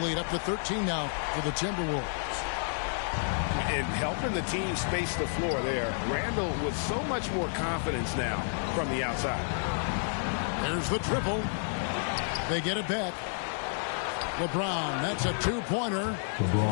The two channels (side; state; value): right; silent; digital silence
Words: up to 13 now for the Timberwolves. And helping the team space the floor there. Randall with so much more confidence now from the outside. There's the triple. They get it back. LeBron, that's a two-pointer.